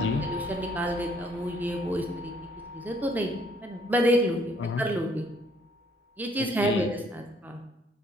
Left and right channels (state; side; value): normal; both; correlation 0.64